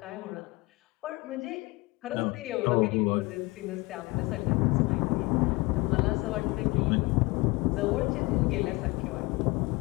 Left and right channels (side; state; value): right; quieter; 23.9 dB